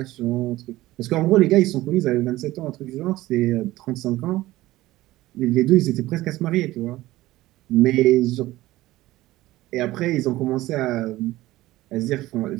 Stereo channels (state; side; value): quieter; left; 17.0 dB